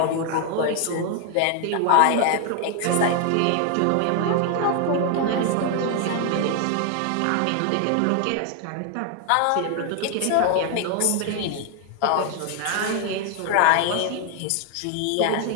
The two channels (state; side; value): different; both; correlation 0.01